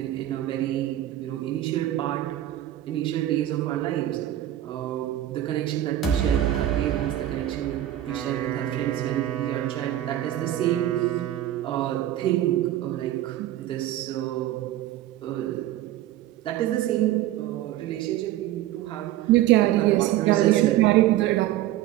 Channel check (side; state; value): left; quieter; 13.4 dB